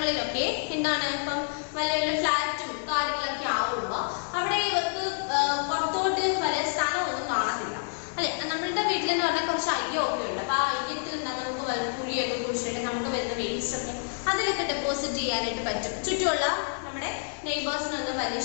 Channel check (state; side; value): silent; right; digital silence